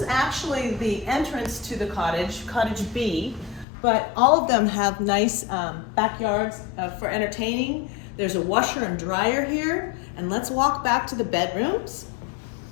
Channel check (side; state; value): right; drops out; at 3.7 s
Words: actually the entrance to the cottage, Cottage B, but all of them have nice backyards for entertaining. There's a washer and dryer here, and let's walk back to the bedrooms.